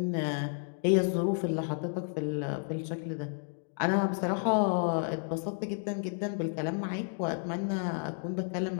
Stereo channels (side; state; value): right; silent; digital silence